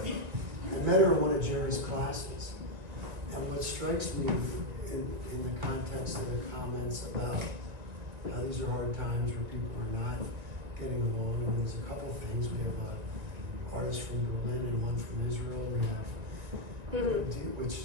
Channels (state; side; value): late; left; 2.2 ms